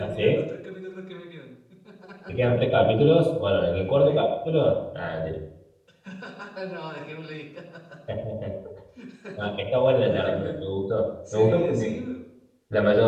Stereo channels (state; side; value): identical; both; correlation 1.00